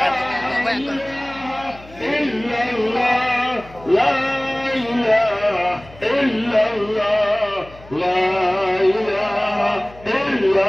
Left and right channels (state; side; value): noise; left; hum, 21 dB below the sound